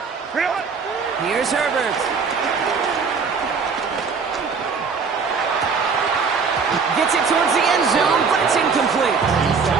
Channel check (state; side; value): quieter; left; 5.3 dB